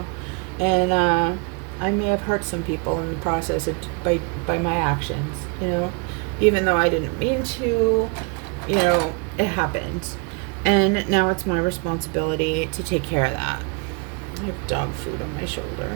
and I may have hurt some people in the process by my actions, you know, even though I didn't mean to, you know, it happened. And now it's my responsibility to take care of that. I have dog food on my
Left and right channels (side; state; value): left; quieter; 32.8 dB